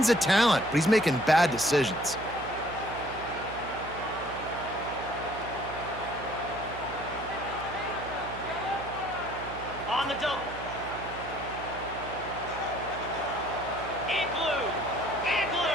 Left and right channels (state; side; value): noise; right; hum, 12 dB below the sound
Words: of talent, but he's making bad decisions. On the double. In blue. In